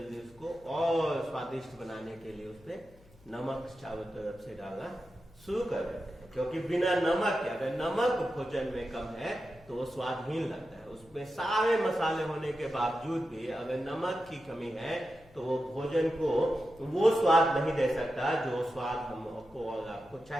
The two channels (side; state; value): left; noise; hum, 26 dB below the sound